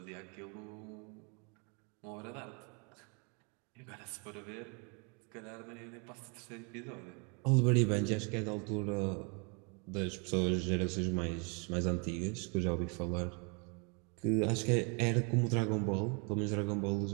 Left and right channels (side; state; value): left; quieter; 34.9 dB